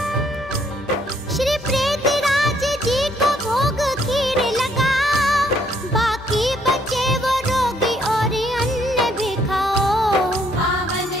श्री प्रेत राज जी को भोग खीर लगाओ, बाकी बचे वो रोगी और अन्न भी खाओ। पावन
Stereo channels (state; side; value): normal; both; correlation 0.68